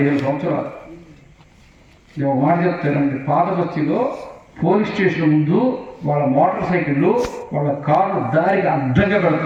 సంవత్సరాలు. నేను ఒక మాట చెప్తానండి. పాత బస్తీలో పోలీస్ స్టేషన్ ముందు వాళ్ళ మోటార్ సైకిళ్ళు, వాళ్ళ కార్లు దారికి అడ్డంగా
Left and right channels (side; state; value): both; identical; correlation 1.00